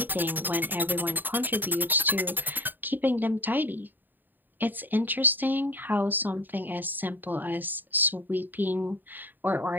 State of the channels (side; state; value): left; late; 0.091 ms